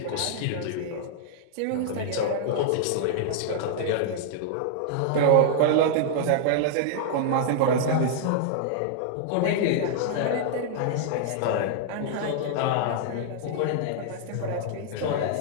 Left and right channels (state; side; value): different; both; correlation -0.01